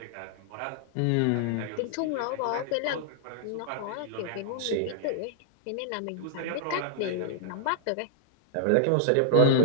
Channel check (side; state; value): both; different; correlation -0.01